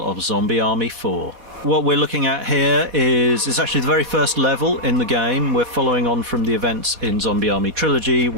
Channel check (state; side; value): late; left; 4.1 ms